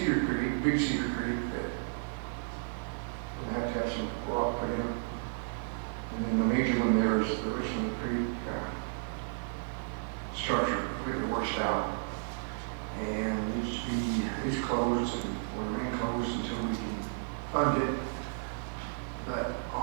Creek, Big Cedar Creek, that we'll have to have some rock put in. And then the major one there is the Richland Creek structure completely washed out. And it's closed and will remain closed until we can fund it. But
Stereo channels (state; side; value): silent; left; digital silence